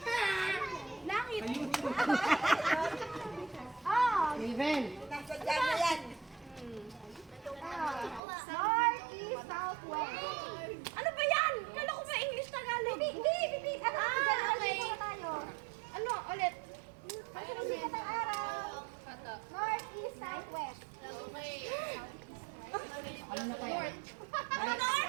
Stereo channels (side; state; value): left; drops out; at 8.2 s